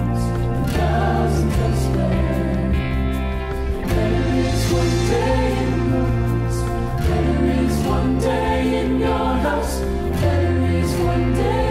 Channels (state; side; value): identical; both; correlation 1.00